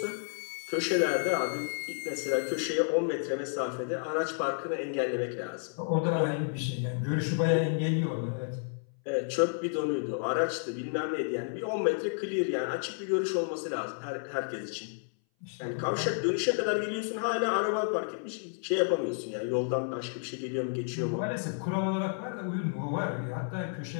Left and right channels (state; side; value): silent; right; 57 dB below the other